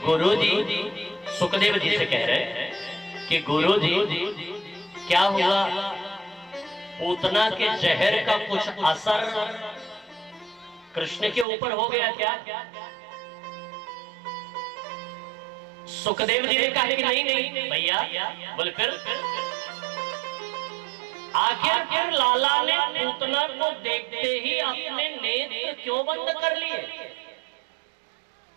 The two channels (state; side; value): drops out; left; at 11.5 s